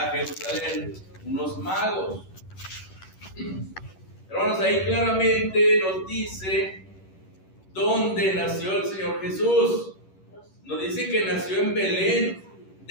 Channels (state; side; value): late; right; 11 ms